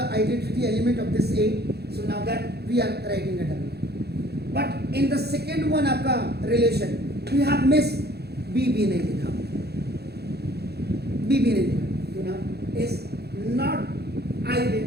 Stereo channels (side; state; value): left; late; 0.47 ms